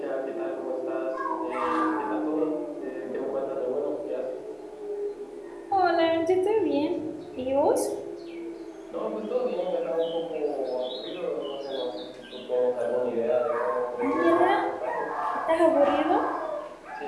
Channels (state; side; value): identical; both; correlation 1.00